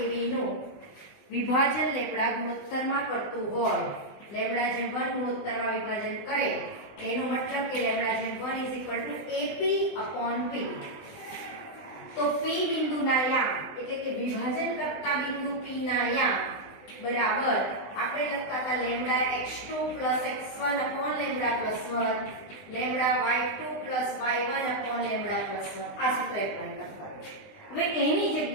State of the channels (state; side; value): late; right; 20 ms